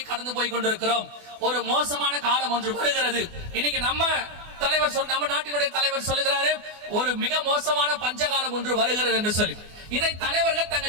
கடந்து போய் கொண்டிருக்கிறோம், ஒரு மோசமான காலம் ஒன்று வருகிறது. இன்னைக்கு நம்ம நாட்டினுடைய தலைவர் சொல்லுகிறாரு, ஒரு மிக மோசமான பஞ்சகாலம் ஒன்று வருகிறது என்று சொல்லி. இதை தலைவர்கள்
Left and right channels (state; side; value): late; left; 24 ms